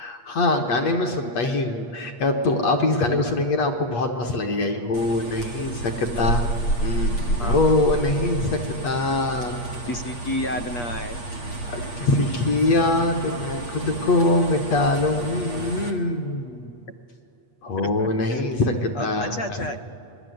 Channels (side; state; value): right; late; 8.4 ms